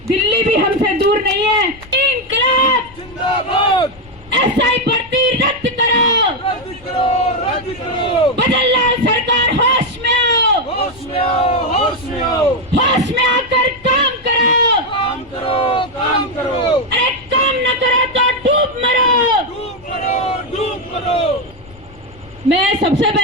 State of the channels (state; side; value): noise; left; rumble, 23 dB below the sound